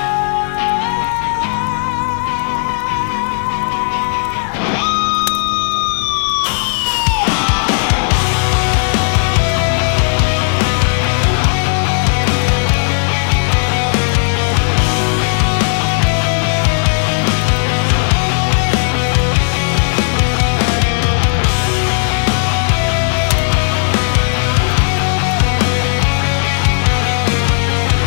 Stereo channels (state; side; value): silent; right; digital silence